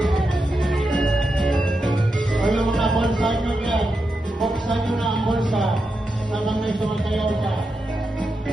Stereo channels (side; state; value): both; normal; correlation 0.87